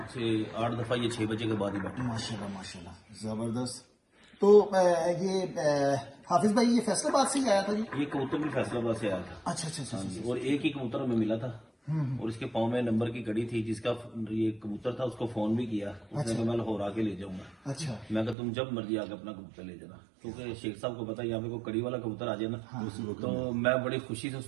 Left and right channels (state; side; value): drops out; left; at 18.4 s